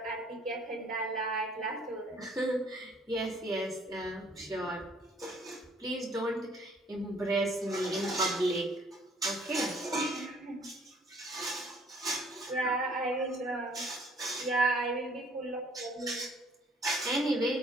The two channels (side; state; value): both; normal; correlation 0.59